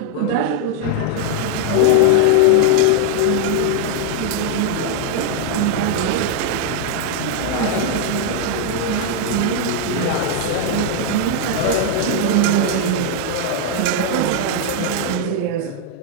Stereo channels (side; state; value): both; different; correlation 0.00